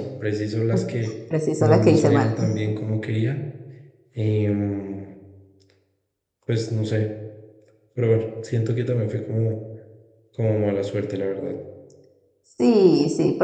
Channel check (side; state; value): both; identical; correlation 1.00